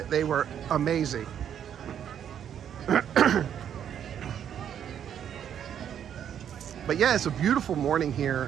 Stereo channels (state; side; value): quieter; left; 9.2 dB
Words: They were amazing. But yeah, it's a beautiful morning